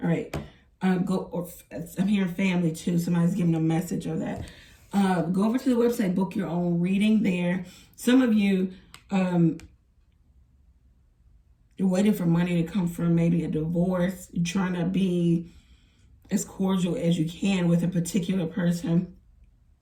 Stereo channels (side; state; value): both; identical; correlation 1.00